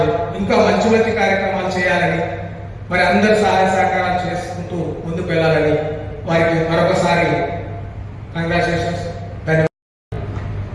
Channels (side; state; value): both; identical; correlation 1.00